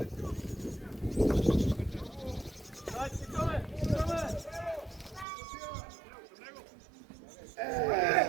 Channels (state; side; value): drops out; left; at 5.2 s